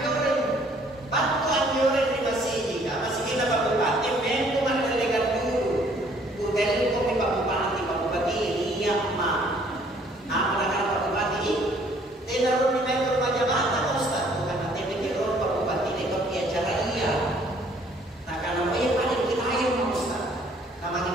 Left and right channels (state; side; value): normal; both; correlation 0.60